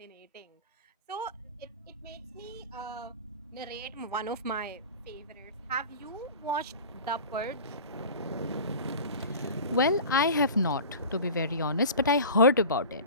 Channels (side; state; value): both; inverted; correlation -0.35